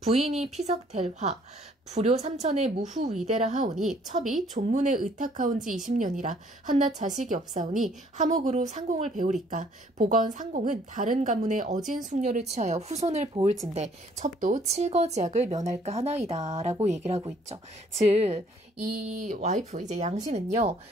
피석델화 불효 삼천의 무후위대라 하오니 첩이 존문에 의탁하온 지 20년이라 한낱 자식이 없사오니 하목으로 상공을 배우리까 보건 상공은 다른 가문의 어진 숙녀를 취하여 후손을 보을진데 첩도 칠거지약을 면할까 하나이다 라고 얘기를 하고 있죠. 즉 이 와이프 이제 양씨는요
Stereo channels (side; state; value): both; normal; correlation 0.61